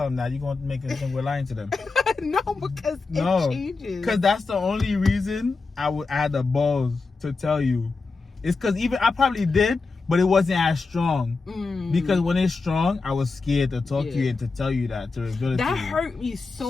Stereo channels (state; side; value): quieter; right; 4.1 dB